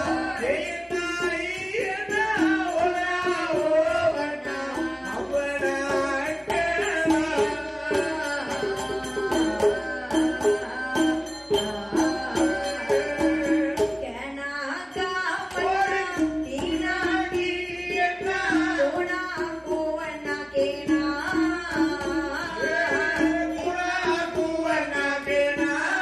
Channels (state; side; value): identical; both; correlation 1.00